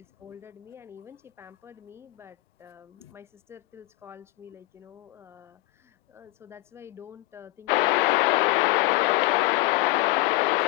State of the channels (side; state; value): right; quieter; 20.5 dB